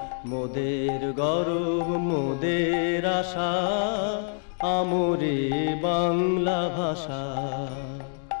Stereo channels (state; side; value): silent; right; digital silence